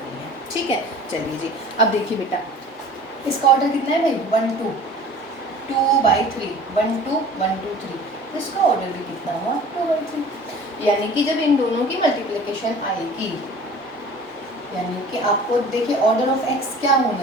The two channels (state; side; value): normal; both; correlation 0.44